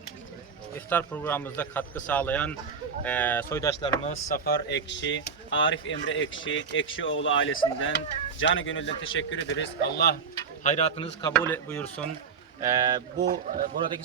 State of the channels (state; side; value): quieter; left; 5.8 dB